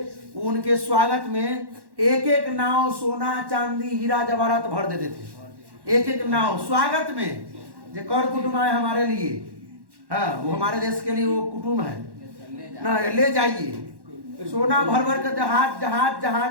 उनके स्वागत में एक एक नाव सोना चांदी हीरा जवाहरात भर देते थे, एक एक नाव स्वागत में, जो कर कुटुंब आए हमारे लिए, हाँ वो हमारे देश के लिए वो कुटुंब है ना, ले जाइए। सोना भर भर कर जहाज जहाज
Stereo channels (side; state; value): left; late; 1.1 ms